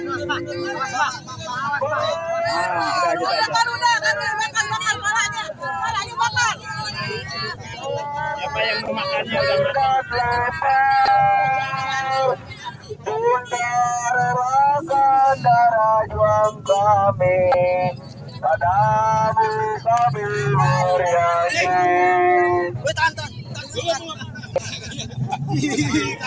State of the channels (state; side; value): identical; both; correlation 1.00